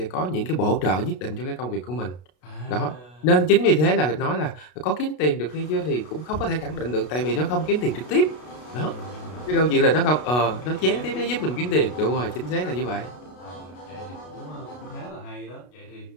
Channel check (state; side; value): late; right; 33 ms